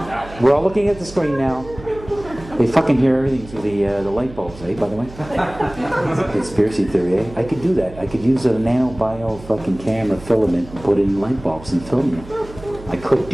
We're all looking at the screen now. They fucking hear everything through the light bulbs, eh, by the way? Conspiracy theory, eh? I could do that. I could use a nanobio fucking camera filament and put it in light bulbs and film you. I could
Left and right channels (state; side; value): noise; right; hum, 17 dB below the sound